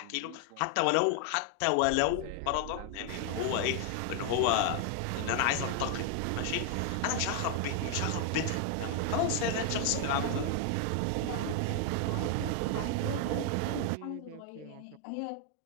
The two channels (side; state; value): both; different; correlation 0.00